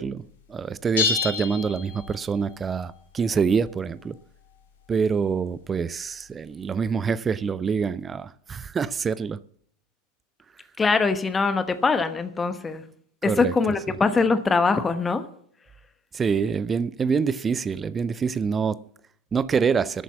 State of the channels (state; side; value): normal; both; correlation 0.74